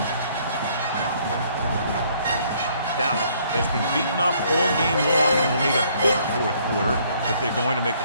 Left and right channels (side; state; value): both; inverted; correlation -0.64